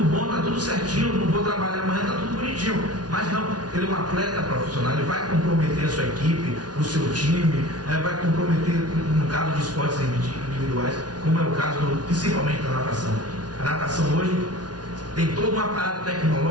bom, tá tudo certinho, não vou trabalhar amanhã, tá tudo bonitinho. Mas não, ele é um atleta profissional, ele vai comprometer a sua equipe, o seu time, vai comprometer, no caso de esportes individuais, como é o caso principalmente da natação. A natação hoje tem todo um aparato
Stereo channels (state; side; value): late; left; 0.69 ms